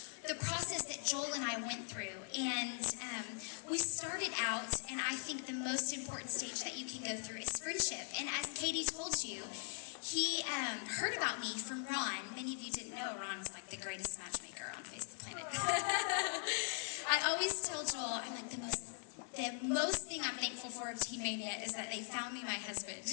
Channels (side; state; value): right; silent; 51 dB below the other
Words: the process that Joel and I went through. And we started out, and I think the most important stage that you can go through is friendship. And as Katie told you, he heard about me from Ron. Many of you didn't know Ron was like the greatest matchmaker on face of the planet. I always tell Joel, I'm like, the most thing I'm thankful for of Teen Mania is that they found me my husband,